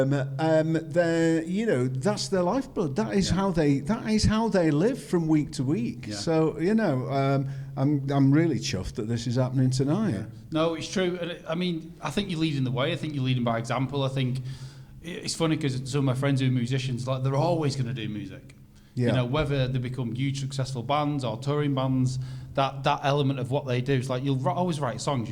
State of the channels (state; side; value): identical; both; correlation 1.00